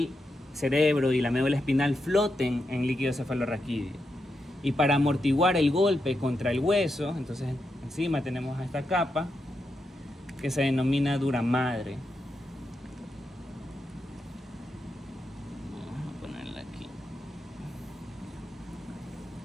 cerebro y la médula espinal floten en líquido cefalorraquídeo. Y para amortiguar el golpe contra el hueso, entonces encima tenemos esta capa que se denomina duramadre. Vamos a ponerla aquí,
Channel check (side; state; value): both; normal; correlation 0.85